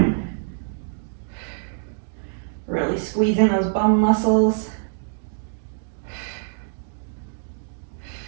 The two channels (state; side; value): silent; left; digital silence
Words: Really squeezing those bum muscles.